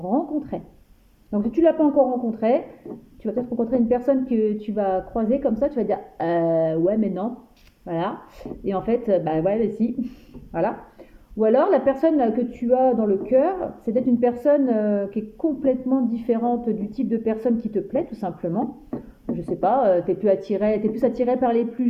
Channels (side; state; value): both; identical; correlation 1.00